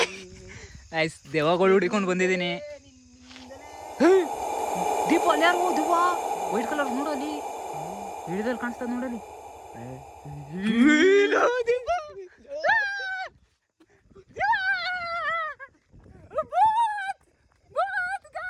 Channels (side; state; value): both; identical; correlation 1.00